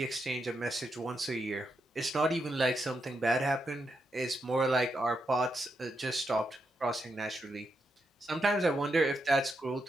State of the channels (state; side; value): normal; both; correlation 0.83